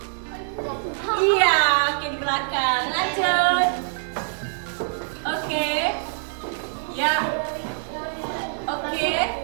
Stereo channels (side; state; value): left; silent; digital silence